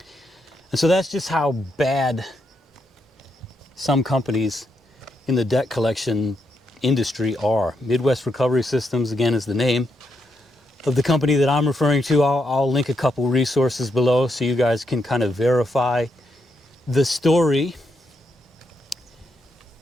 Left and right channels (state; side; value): normal; both; correlation 0.80